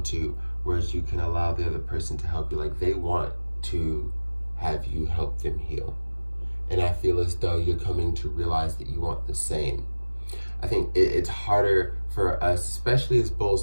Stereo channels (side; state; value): both; inverted; correlation -1.00